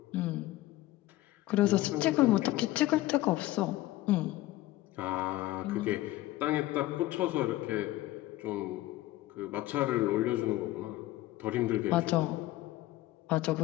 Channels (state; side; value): quieter; right; 16.6 dB